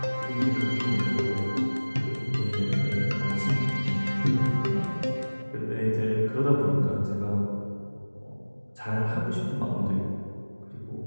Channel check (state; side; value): inverted; both; correlation -1.00